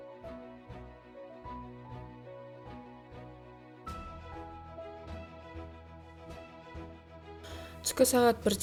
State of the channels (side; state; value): both; identical; correlation 1.00